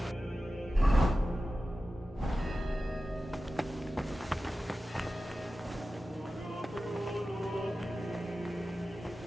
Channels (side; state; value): both; normal; correlation 0.94